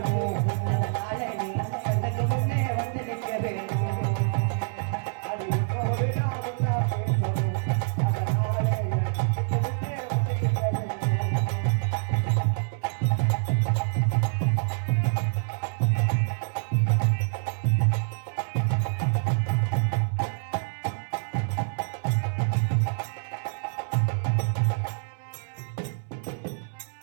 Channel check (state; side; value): silent; left; 60 dB below the other